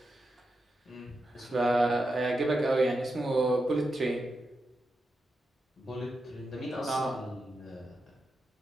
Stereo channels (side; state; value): both; normal; correlation 0.87